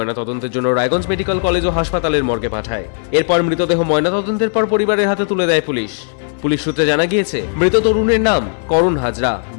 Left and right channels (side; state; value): right; silent; digital silence